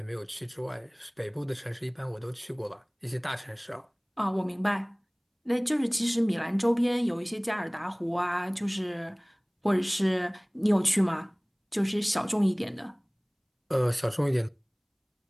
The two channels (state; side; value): identical; both; correlation 1.00